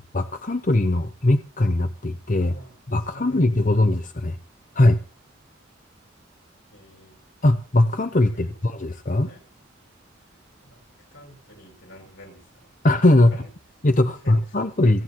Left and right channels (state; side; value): normal; both; correlation 0.83